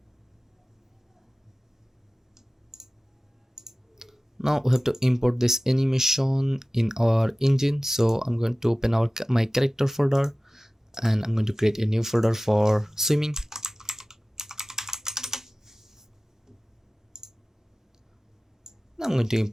Now we have to import this animation in our engine. So I'm going to open my character folder, and I'm going to create a new folder for swimming. Now I'm going to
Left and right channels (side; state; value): both; normal; correlation 0.96